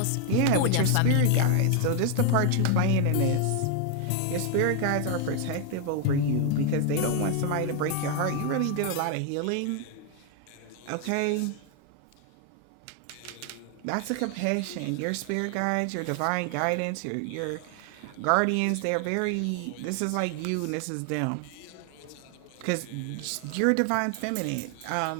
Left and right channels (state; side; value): different; both; correlation 0.00